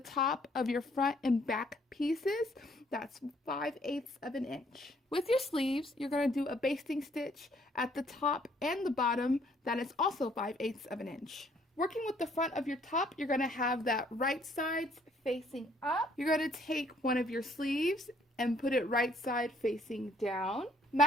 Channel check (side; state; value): both; normal; correlation 0.64